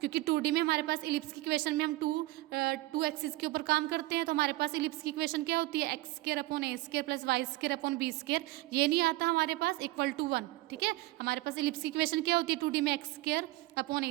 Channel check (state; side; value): quieter; left; 19.5 dB